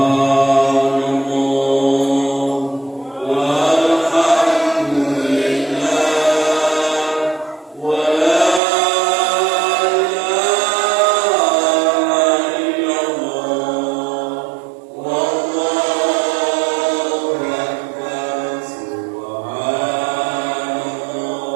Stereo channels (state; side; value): drops out; left; at 8.6 s